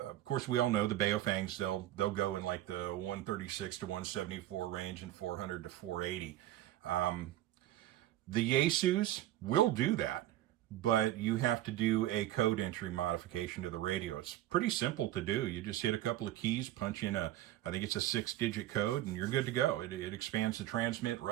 course, we all know the Baofangs, they'll go in like the 136 to 174 range and 400 to 480. The Yaesus will do that, but you have to do a code entry modification to the radio. It's pretty simple to do. You just hit a couple of keys, punch in I think it's a 6-digit code, and you're good to go. It expands the transmit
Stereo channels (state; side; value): quieter; left; 14.1 dB